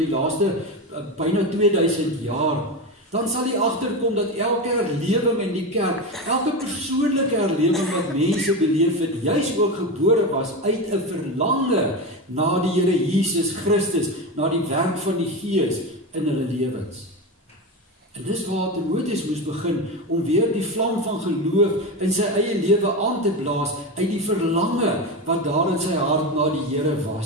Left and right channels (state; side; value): normal; both; correlation 0.19